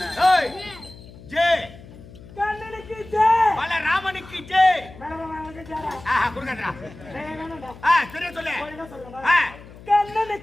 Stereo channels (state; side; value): noise; left; hum, 19 dB below the sound